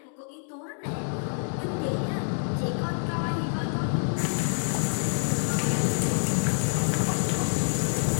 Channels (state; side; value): silent; right; digital silence